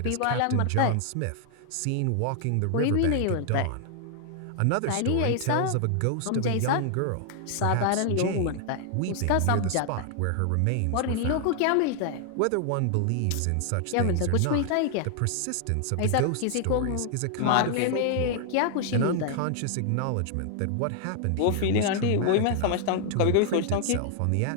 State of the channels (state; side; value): different; both; correlation 0.00